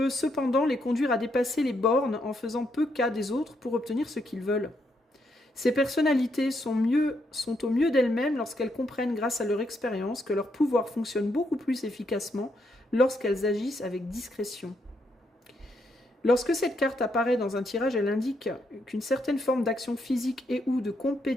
cependant les conduire à dépasser les bornes en faisant peu cas des autres pour obtenir ce qu'ils veulent. Ces personnalités sont au mieux d'elles-mêmes lorsqu'elles comprennent grâce à leur expérience que leur pouvoir fonctionne beaucoup plus efficacement lorsqu'elles agissent avec discrétion. Lorsque cette carte apparaît dans un tirage, elle indique qu'une certaine forme d'action physique et ou de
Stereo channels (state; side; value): normal; both; correlation 0.77